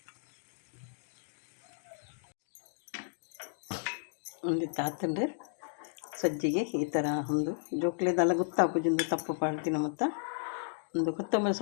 ಒಂದು ತಾತಂಡು ಸಜ್ಜಿಗೆ ಈ ಥರ ಒಂದು ಜೋಕ್ಲೆದೆಲ್ಲ ಗೊತ್ತಾಪುಜೊಂದು ತಪ್ಪು ಪಾಡ್ತಿನ ಮತ್ತು ಒಂದು ಕೊತ್ತಂಬರಿ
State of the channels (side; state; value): right; silent; digital silence